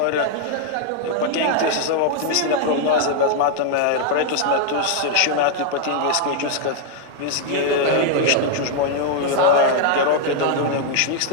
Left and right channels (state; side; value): different; both; correlation 0.00